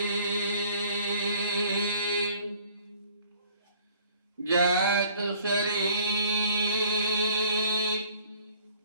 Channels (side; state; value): both; inverted; correlation -0.56